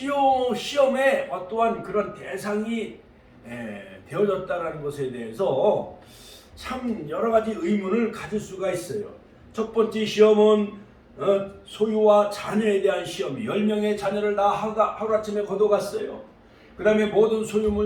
어떠한 그런 대상이 되어졌다는 것에 대해서 참 여러 가지 의문을 가질 수가 있어요. 첫 번째 시험은 소유와 자녀에 대한 시험. 10명의 자녀를 다 하루아침에 거둬갔어요. 그 다음에 모든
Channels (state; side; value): identical; both; correlation 1.00